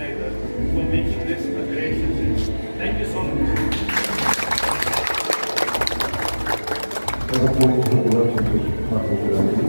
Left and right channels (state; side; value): inverted; both; correlation -1.00